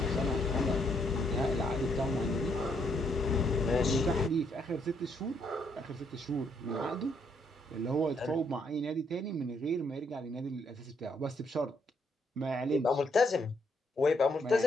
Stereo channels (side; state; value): both; normal; correlation 0.73